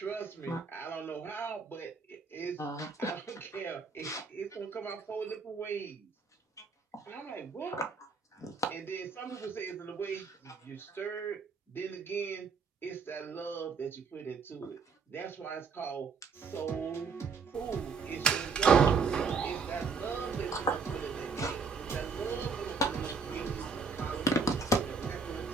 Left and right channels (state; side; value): quieter; left; 4.8 dB